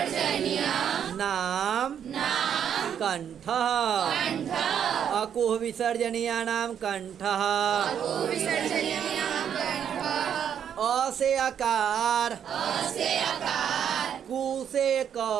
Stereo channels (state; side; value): quieter; left; 8.7 dB